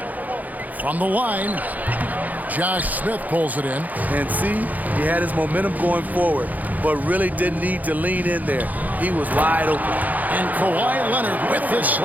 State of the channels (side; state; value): left; late; 0.080 ms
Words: From the line, Josh Smith pulls it in. And see, he had his momentum going forward, but really didn't need to lean in there. He was wide open. And Kawhi Leonard with the